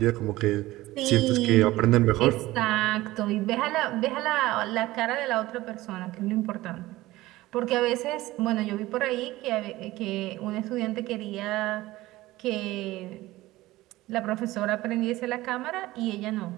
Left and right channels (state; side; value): quieter; left; 17.8 dB